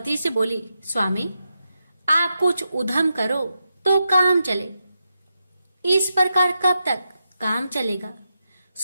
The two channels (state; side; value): inverted; both; correlation -0.86